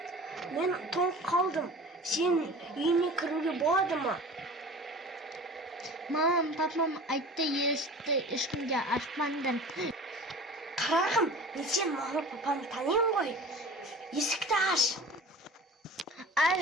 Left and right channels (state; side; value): normal; both; correlation 0.39